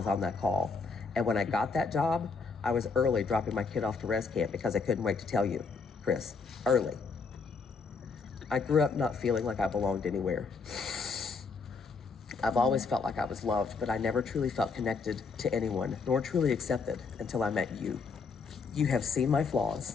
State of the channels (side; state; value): right; quieter; 4.7 dB